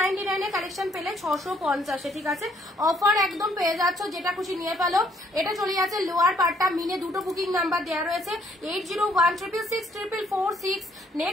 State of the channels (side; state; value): both; normal; correlation 0.67